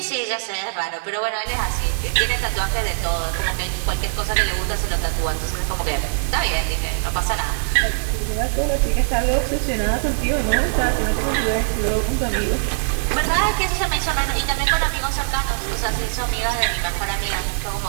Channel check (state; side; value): silent; left; digital silence